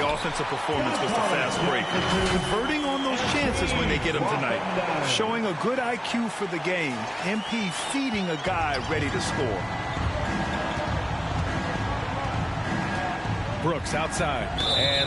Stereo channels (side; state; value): both; identical; correlation 1.00